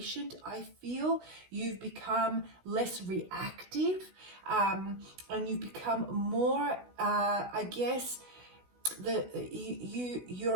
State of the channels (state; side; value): late; left; 16 ms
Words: I feel. You've become less reactive. And you've become more, I guess,